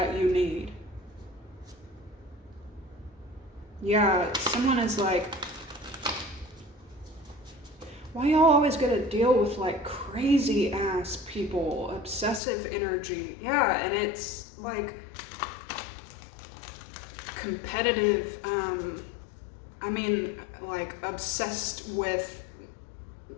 you need. Yeah, someone is like, why y'all always gotta deal with like crazy ass people, obsessive energy? Yeah, and it's like competitive, like obsessed with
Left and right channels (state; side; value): drops out; right; at 12.4 s